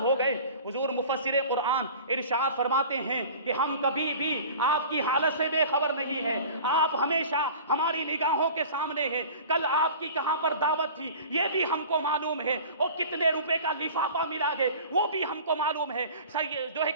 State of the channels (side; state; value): both; inverted; correlation -0.41